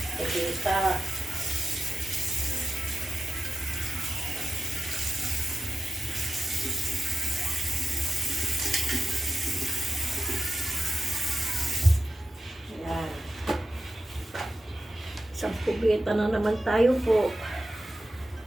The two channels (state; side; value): normal; both; correlation 0.93